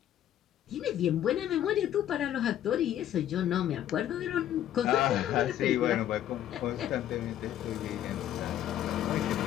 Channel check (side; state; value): right; quieter; 11.4 dB